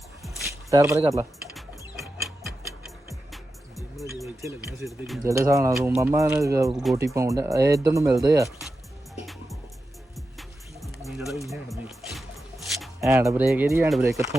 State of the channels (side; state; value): both; normal; correlation 0.90